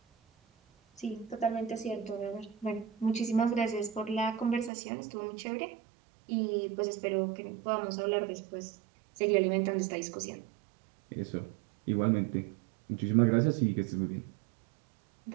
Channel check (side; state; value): left; drops out; at 4.7 s